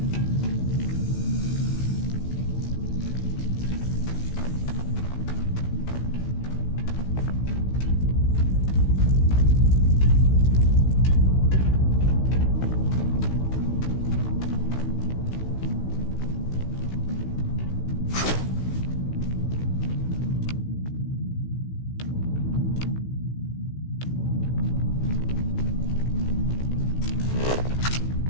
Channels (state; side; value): late; right; 16 ms